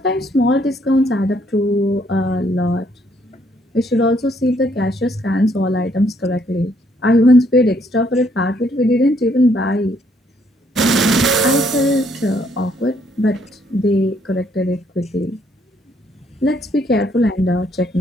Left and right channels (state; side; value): normal; both; correlation 0.68